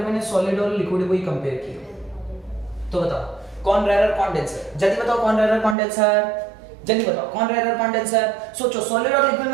सॉलिड और लिक्विड को ही कंपेयर किया तो बताओ कौन रेयर कौन डेंसर? जल्दी बताओ कौन रेयर कौन डेंसर? जल्दी बताओ कौन रेयर कौन डेंसर? सोचो, सॉलिड और लिक्विड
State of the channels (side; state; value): left; drops out; at 5.8 s